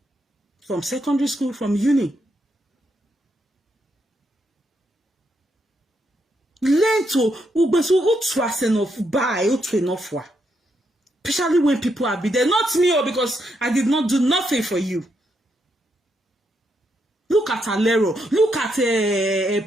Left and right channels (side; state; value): both; normal; correlation 0.79